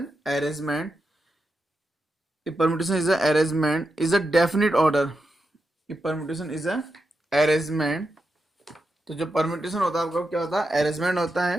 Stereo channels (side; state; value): both; normal; correlation 0.87